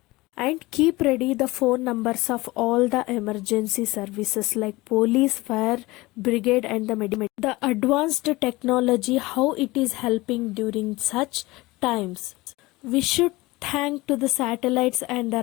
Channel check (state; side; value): quieter; right; 21.0 dB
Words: and keep ready the phone numbers of all the emergency services like police, fire brigade, and the medic. The advanced technology, how it is helping during such times. We should thank to the satellites and